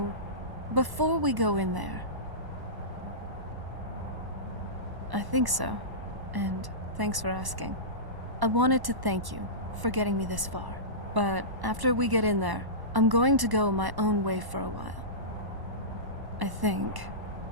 before we go in there... I think so, and thanks for asking. I wanted to thank you for getting me this far, but after we get in there, I'm going to go my own way for a while. I think.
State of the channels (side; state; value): left; late; 1.1 ms